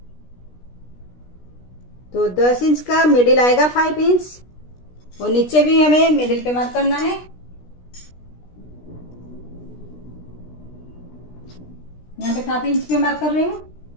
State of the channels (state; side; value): late; right; 16 ms